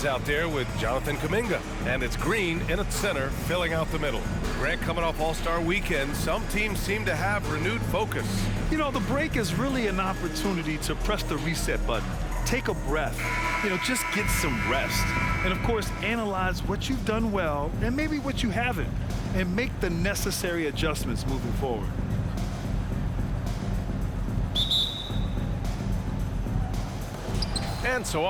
out there with Jonathan Kuminga. And it's Green in at center, filling out the middle. Grant, coming off All-Star Weekend, some teams seem to have renewed focus. You know, the break is really an opportunity to press the reset button. Take a breath. Just get some rest. And, of course, analyze what you've done well and maybe what you haven't, and make the necessary adjustments moving forward. And so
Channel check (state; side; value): identical; both; correlation 1.00